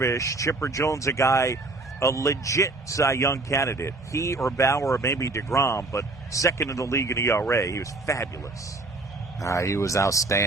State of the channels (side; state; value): left; quieter; 3.2 dB